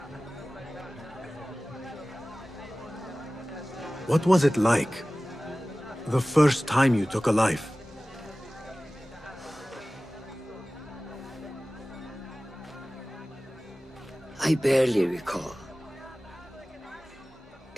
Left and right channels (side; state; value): both; normal; correlation 0.97